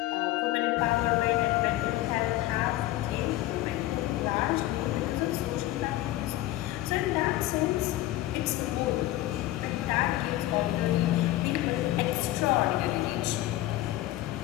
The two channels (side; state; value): right; quieter; 15.8 dB